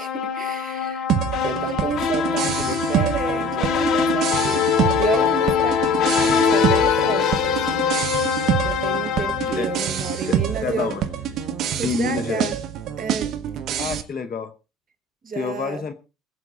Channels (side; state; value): both; normal; correlation 0.43